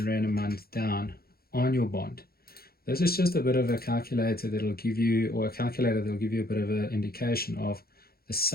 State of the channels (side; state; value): right; late; 0.44 ms